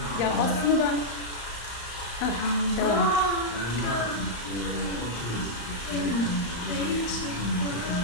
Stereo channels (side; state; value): right; late; 35 ms